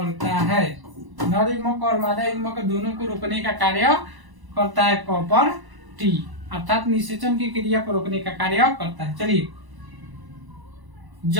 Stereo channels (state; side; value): late; left; 1.0 ms